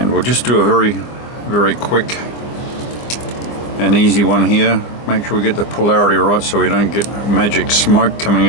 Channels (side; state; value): right; late; 25 ms